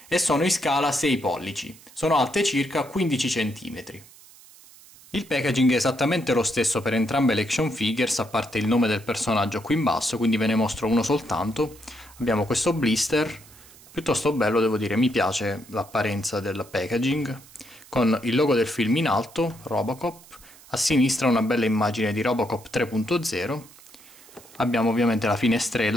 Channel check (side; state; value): right; noise; hiss, 23 dB below the sound